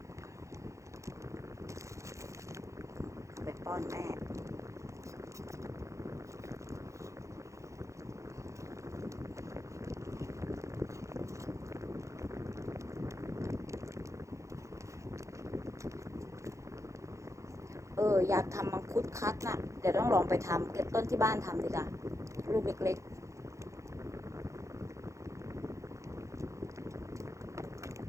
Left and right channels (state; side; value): late; left; 0.15 ms